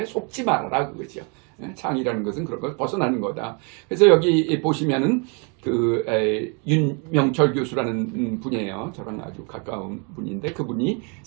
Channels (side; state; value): left; quieter; 34.4 dB